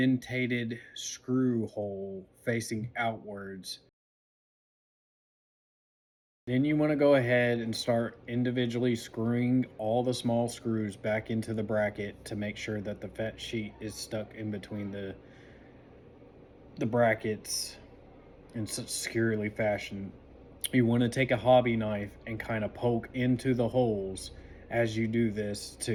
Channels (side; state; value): both; identical; correlation 1.00